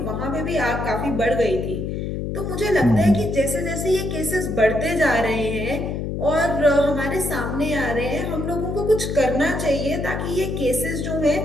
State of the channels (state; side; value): noise; left; hum, 3 dB below the sound